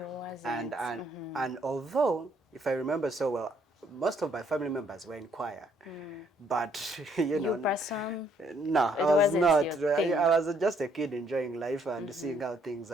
And wasn't. and and although, if I remember so well, most of my family members were in choir, but You person, no, I it was wasn't not. your I thing. was just a kid enjoying life and seeing how things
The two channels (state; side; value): normal; both; correlation 0.68